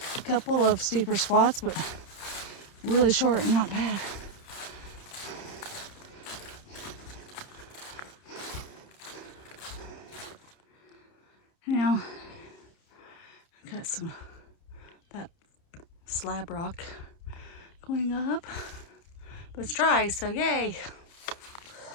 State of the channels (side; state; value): right; late; 30 ms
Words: A couple of steeper spots, but really short and not bad. Now, got that slab rock going up, but it's dry, so yay.